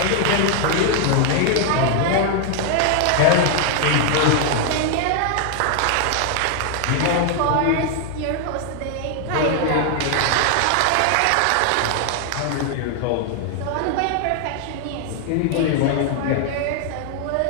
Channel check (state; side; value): different; both; correlation 0.00